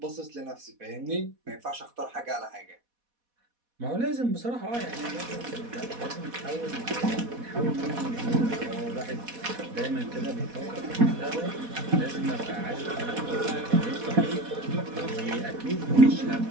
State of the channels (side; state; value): left; late; 4.1 ms